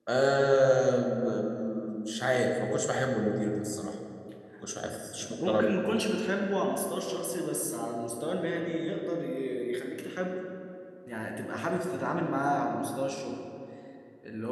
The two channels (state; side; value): identical; both; correlation 1.00